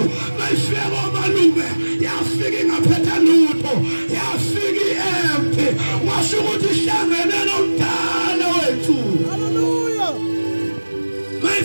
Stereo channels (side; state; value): both; inverted; correlation -1.00